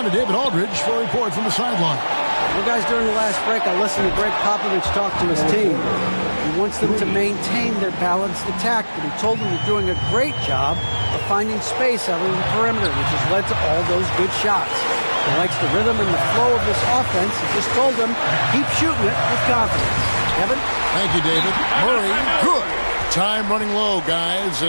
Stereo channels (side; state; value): both; inverted; correlation -1.00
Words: to David Aldridge for a report from the sideline. Well, guys, during the last break, I listened to Greg Popovich talk to his team. He wants them to maintain their balanced attack, but he told them they're doing a great job of finding space out on the perimeter, which has led to all those good shots. He likes the rhythm and the flow of this offense. He just told them, keep shooting it with confidence. Kevin? Thank you, David. Murray, good. Time running low, guys,